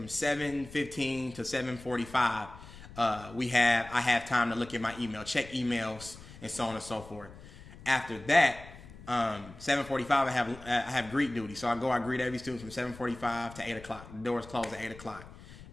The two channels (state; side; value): noise; left; rumble, 17 dB below the sound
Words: 7:15 to 7:45, I have time to look at my email, check emails, and so on and so forth. After that, 7:45, I have greet duty. So I greet every student from 7:45 to 8 o'clock. The doors close at 8 o'clock.